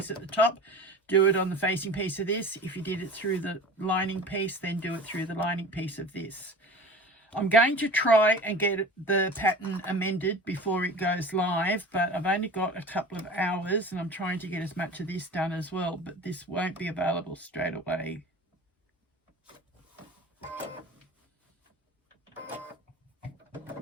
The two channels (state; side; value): normal; both; correlation 0.37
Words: at the top, do it on the facing piece of this. If you did it through the lining piece, then do it through the lining piece of this. I'm going to try and get the pattern amended before it goes live, but I've only got a couple of hours and I'm trying to get as much of this done as well, but this won't be available straight away.